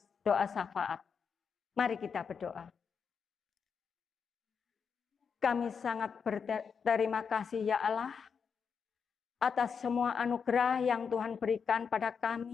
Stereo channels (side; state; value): right; quieter; 6.2 dB